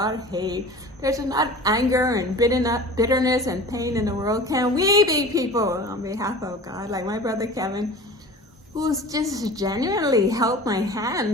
of hate, there's enough anger and bitterness and pain in the world. Can we be people on behalf of God? Like my brother Kevin, who's just genuinely held my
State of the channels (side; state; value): both; normal; correlation 0.39